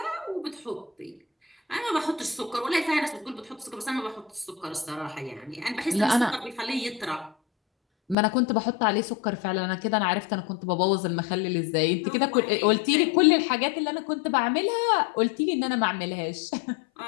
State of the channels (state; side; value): drops out; right; at 8.2 s